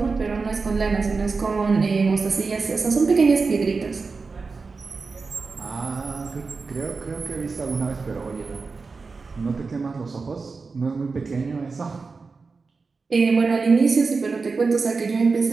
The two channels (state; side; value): quieter; left; 4.4 dB